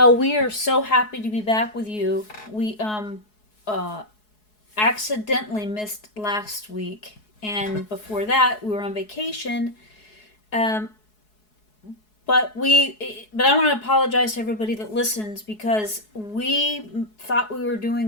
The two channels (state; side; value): late; right; 4.7 ms